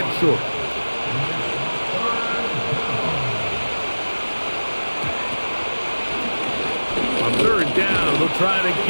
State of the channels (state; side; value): inverted; both; correlation -1.00